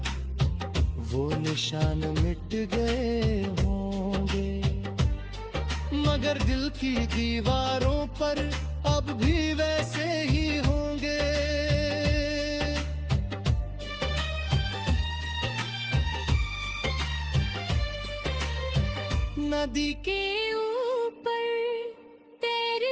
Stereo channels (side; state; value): both; identical; correlation 1.00